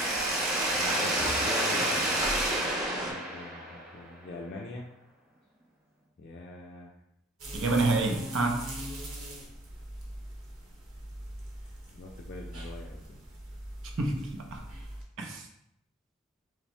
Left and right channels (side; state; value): both; normal; correlation 0.45